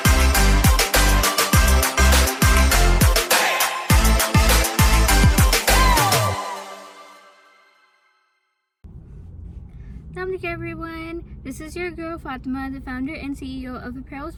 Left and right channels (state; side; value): identical; both; correlation 1.00